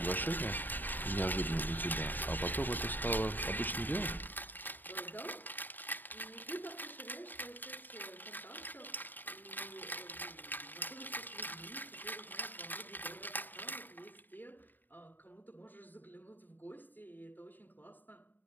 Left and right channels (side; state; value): right; late; 0.090 ms